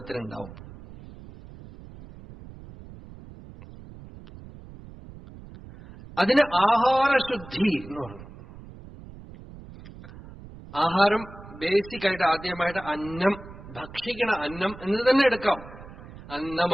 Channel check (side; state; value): right; noise; rumble, 17 dB below the sound